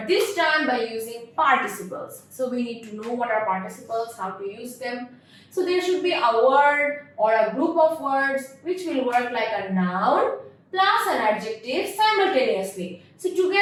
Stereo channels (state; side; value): identical; both; correlation 1.00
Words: this time by using participles. So we need to know what are participles, how to use them. So there should be a word or a group of words which will work like a noun plus an adjective simultaneously. So